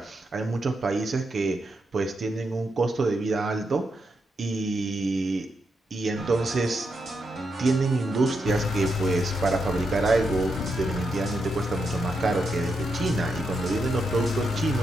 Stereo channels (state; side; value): normal; both; correlation 0.83